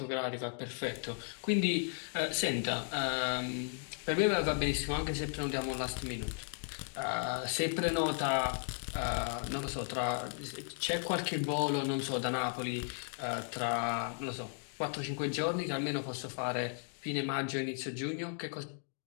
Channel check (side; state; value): right; silent; 54 dB below the other